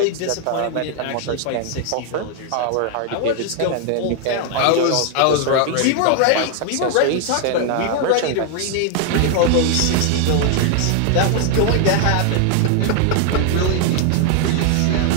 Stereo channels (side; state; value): both; different; correlation 0.00